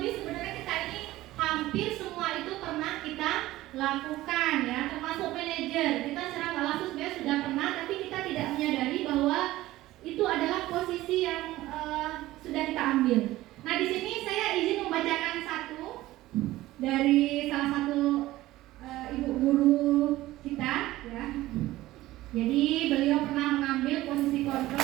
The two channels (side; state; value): left; quieter; 16.6 dB